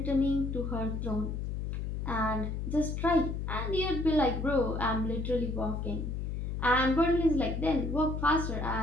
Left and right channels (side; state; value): left; noise; hum, 3 dB below the sound